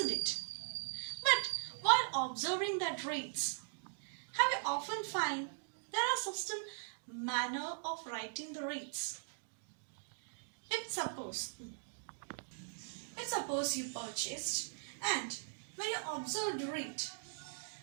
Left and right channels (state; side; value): silent; left; digital silence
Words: it? But while observing that rates, have you often find there are certain manner of writing the rates? If suppose you purchased, and when you observe the